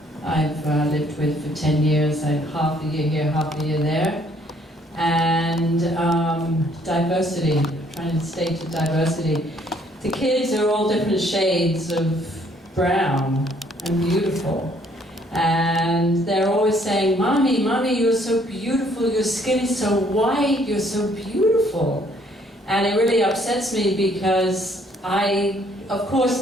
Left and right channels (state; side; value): normal; both; correlation 0.64